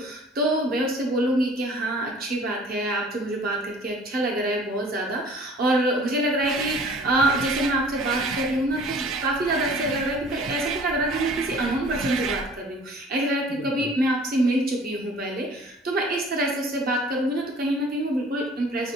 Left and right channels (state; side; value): normal; both; correlation 0.49